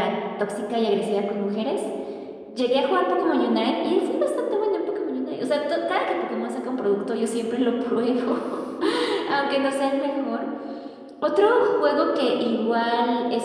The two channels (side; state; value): both; identical; correlation 1.00